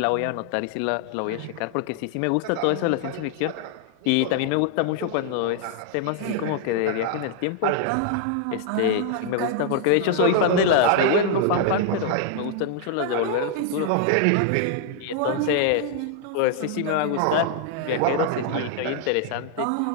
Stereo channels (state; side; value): different; both; correlation 0.00